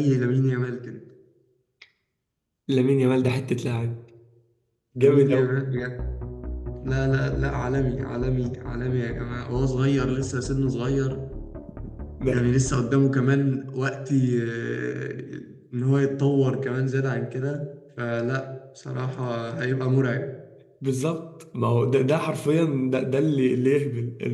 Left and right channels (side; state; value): both; identical; correlation 1.00